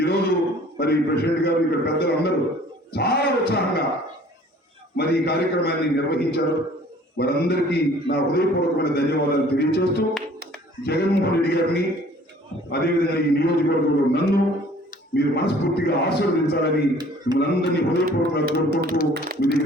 ఈరోజు మరి ప్రెసిడెంట్ గారు, ఇక్కడ పెద్దలు అందరూ చాలా ఉత్సాహంగా మరి ఈ కార్యక్రమాన్ని నిర్వహించారు. వారందరికీ నా హృదయపూర్వకమైన ధన్యవాదాలు తెలియజేస్తూ, జగన్మోహన్ రెడ్డి గారిని అదేవిధంగా ఈ నియోజకవర్గంలో నన్ను మీరు మనస్ఫూర్తిగా ఆశీర్వదించాలని మిమ్మల్ని అందరినీ హృదయపూర్వకంగా కోరుకుంటూ మీ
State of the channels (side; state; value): both; normal; correlation 0.53